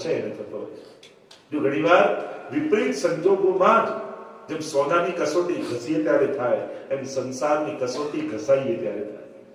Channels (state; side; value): identical; both; correlation 1.00